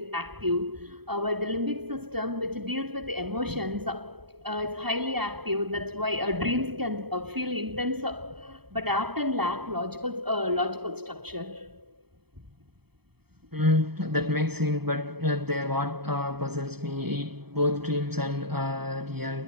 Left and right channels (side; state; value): left; late; 0.97 ms